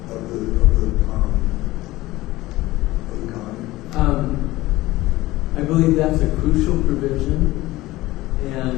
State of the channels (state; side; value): quieter; right; 18.1 dB